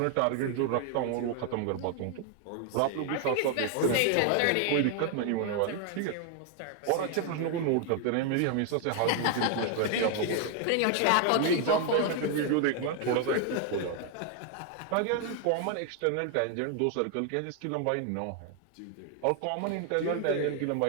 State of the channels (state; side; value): different; both; correlation 0.00